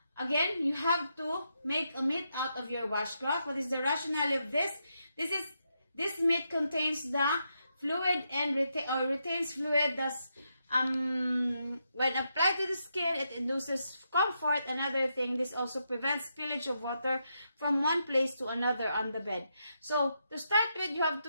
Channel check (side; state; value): both; inverted; correlation -0.82